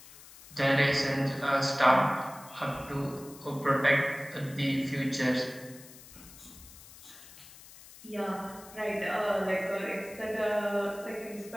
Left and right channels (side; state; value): left; noise; hiss, 19 dB below the sound